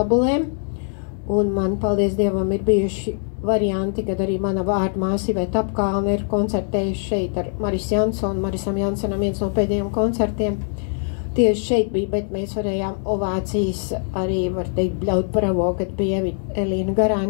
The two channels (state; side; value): silent; right; 64 dB below the other